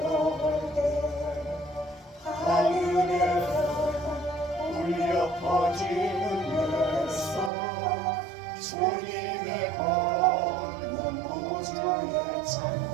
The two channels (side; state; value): left; drops out; at 7.5 s